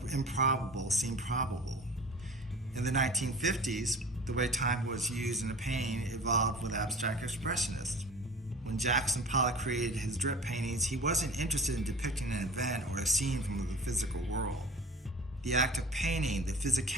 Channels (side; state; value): both; normal; correlation 0.40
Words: improbable seem probable. In the 1950s, the way time was used in a painting evolved with abstract expressionists. When Jackson Pollock created his drip paintings, he wasn't interested in depicting an event or a scene from the physical world. The act of painting, the